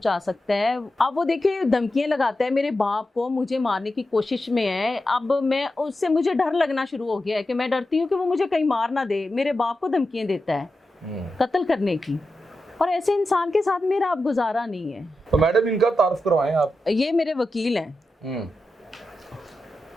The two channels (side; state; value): both; normal; correlation 0.90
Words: सकता है। अब वो देखिए धमकियां लगाता है मेरे बाप को, मुझे मारने की कोशिश में है। अब मैं उससे मुझे डर लगना शुरू हो गया है कि मैं डरती हूँ कि वो मुझे कहीं मार ना दे, मेरे बाप को धमकियां देता है कत्ल करने की। और ऐसे इंसान के साथ मेरा अब गुजारा नहीं है। तो मैडम इनका तारुफ करवाएं आप। ये मेरे वकील हैं।